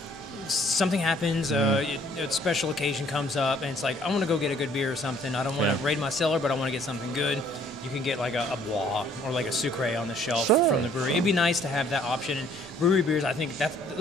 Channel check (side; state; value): both; normal; correlation 0.60